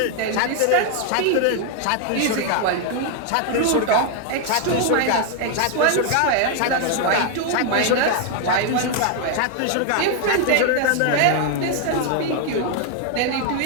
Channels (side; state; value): both; different; correlation 0.00